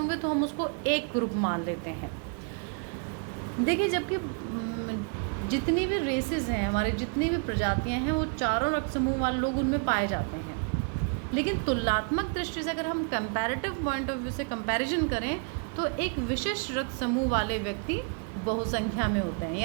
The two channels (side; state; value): left; quieter; 36.5 dB